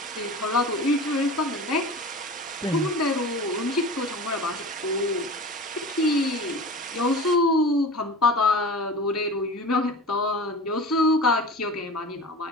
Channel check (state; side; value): normal; both; correlation 0.35